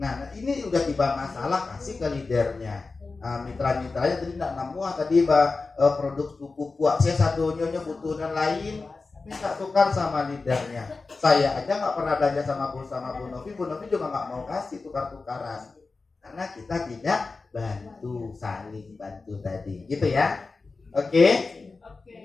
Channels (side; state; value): right; quieter; 4.0 dB